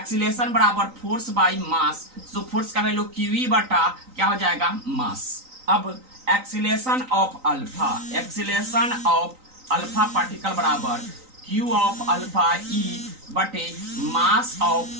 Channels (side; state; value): left; late; 3.9 ms